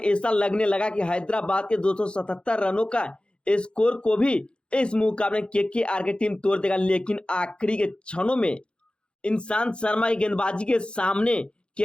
लगने लगा कि हैदराबाद के 277 रनों का स्कोर को भी इस मुकाबले में केकेआर की टीम तोड़ देगा। लेकिन आखिरी के क्षणों में ईशांत शर्मा की गेंदबाजी के सामने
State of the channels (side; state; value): right; late; 0.054 ms